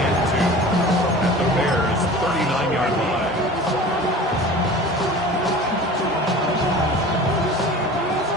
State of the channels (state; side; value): normal; both; correlation 0.39